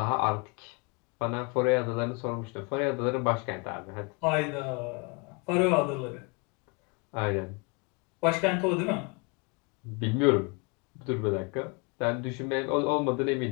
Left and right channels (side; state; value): right; quieter; 30.9 dB